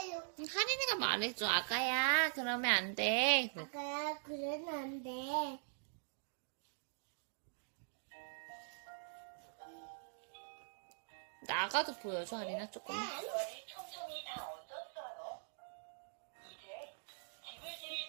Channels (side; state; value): left; silent; digital silence